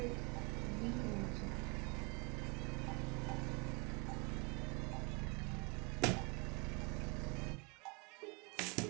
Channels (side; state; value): left; quieter; 30.4 dB